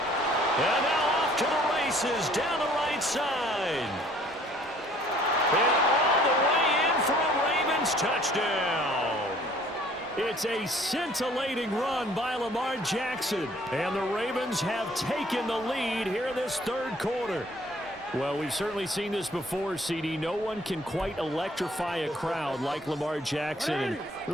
And now off to the races down the right side. And all the way in for a Ravens touchdown. It's a scintillating run by Lamar Jackson. And the Ravens have taken the lead here in this third quarter. Well, we've certainly seen this before, CD. No one can quite electrify a crowd like Lamar Jackson, and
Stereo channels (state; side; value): normal; both; correlation 0.57